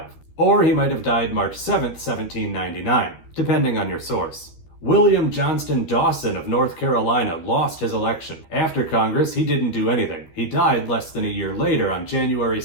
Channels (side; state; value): right; late; 13 ms